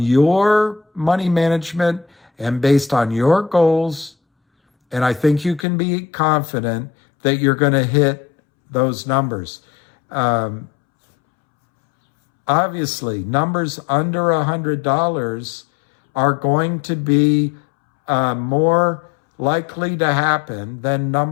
money management and based on your goals. And I think you can be confident that you're going to hit those numbers. Obviously, numbers under $100 are going to be more likely to happen than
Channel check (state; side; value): drops out; right; at 5.7 s